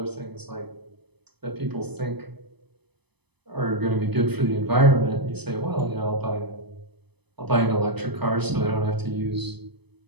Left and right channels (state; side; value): late; left; 0.99 ms